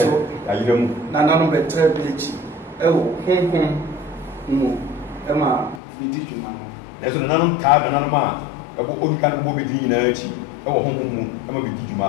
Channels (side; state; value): right; drops out; at 5.8 s